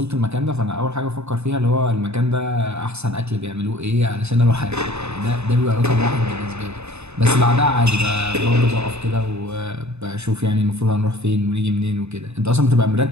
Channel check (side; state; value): left; late; 0.81 ms